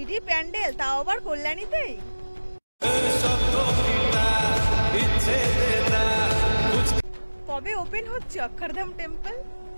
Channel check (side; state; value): both; inverted; correlation -1.00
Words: প্যান্ডেল, তাও আবার কল্যাণীতেই। কবে ওপেন হচ্ছে অক্ষরধাম টেম্পল?